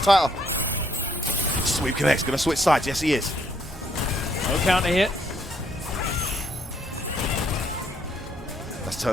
Sweep connects, gonna switch sides. Yes, he is. No counter hit. Let's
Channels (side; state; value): both; normal; correlation 0.69